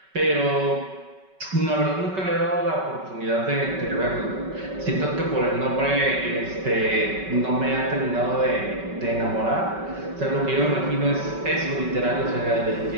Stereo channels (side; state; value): left; late; 5.3 ms